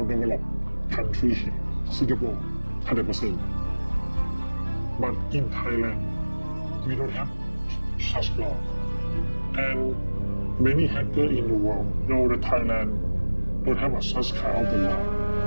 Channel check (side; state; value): both; inverted; correlation -1.00